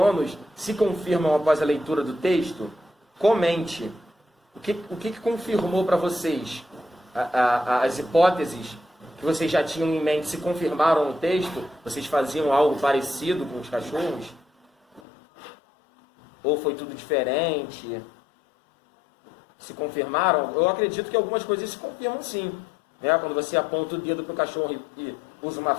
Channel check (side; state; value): right; drops out; at 15.0 s